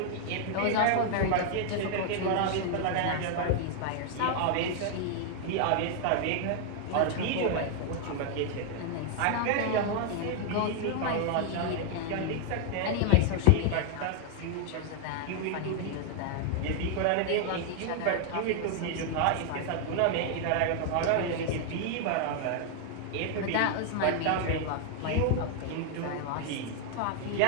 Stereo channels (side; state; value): both; different; correlation 0.00